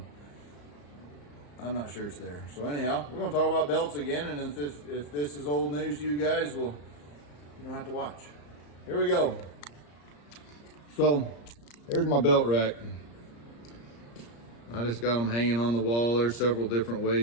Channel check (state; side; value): late; right; 34 ms